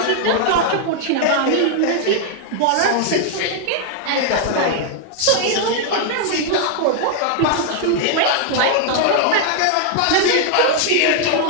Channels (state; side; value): different; both; correlation 0.00